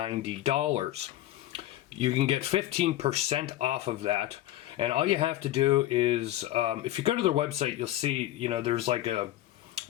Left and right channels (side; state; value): right; quieter; 14.5 dB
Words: You can get 15% off of that. And all you have to do is, if you go to their website, you'll see, there's like and